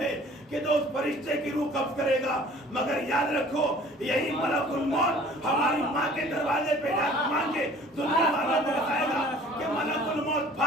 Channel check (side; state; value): both; normal; correlation 0.50